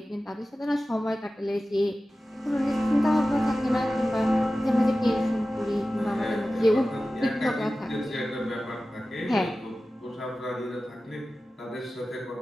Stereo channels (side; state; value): both; normal; correlation 0.95